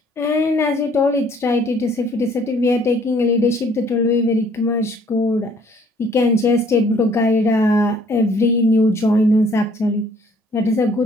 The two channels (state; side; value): normal; both; correlation 0.60